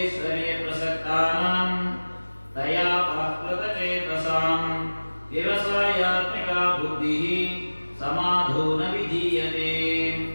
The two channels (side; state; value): both; inverted; correlation -1.00